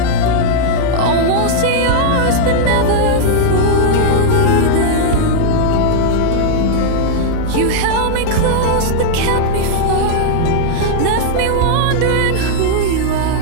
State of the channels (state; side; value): different; both; correlation -0.01